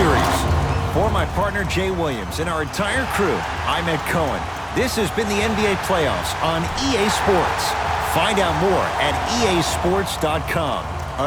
For my partner Jay Williams and our entire crew, I'm Ed Cohen. This has been the NBA playoffs on EA Sports. Find out more at easports.com.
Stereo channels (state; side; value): identical; both; correlation 1.00